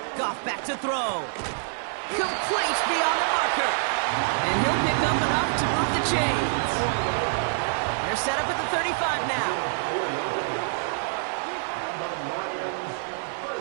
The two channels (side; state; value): left; silent; 55 dB below the other